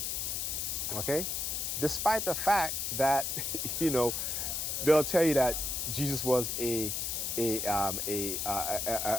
Okay? Despite the fact that, they'll tell you that Jesus was a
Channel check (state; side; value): noise; left; hiss, 1 dB below the sound